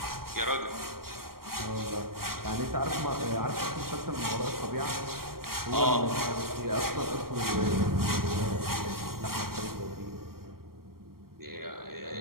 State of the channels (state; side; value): late; left; 0.93 ms